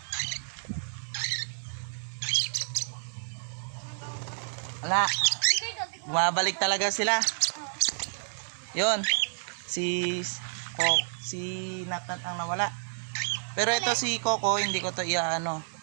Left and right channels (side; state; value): left; silent; digital silence